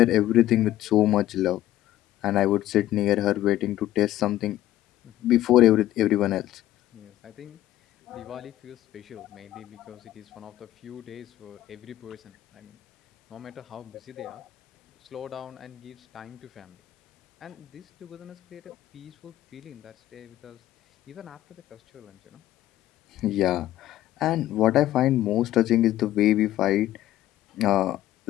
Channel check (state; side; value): quieter; right; 14.1 dB